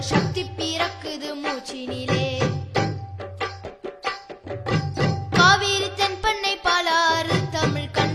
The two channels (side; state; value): both; identical; correlation 1.00